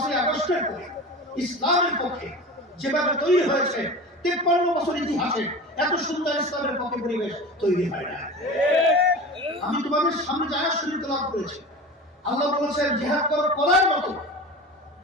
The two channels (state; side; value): normal; both; correlation 0.32